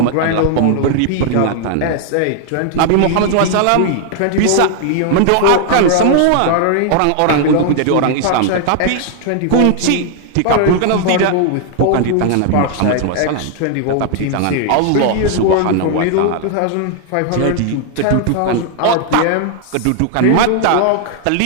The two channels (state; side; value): different; both; correlation 0.00